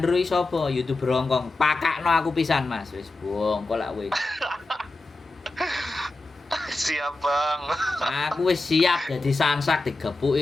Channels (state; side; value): quieter; right; 3.0 dB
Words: iki sapa? YouTuber Hongkong. Pakakno aku pisan, Mas." Wis bongkol lak kowe. Siap Bang. Aku wis siap dadi sansak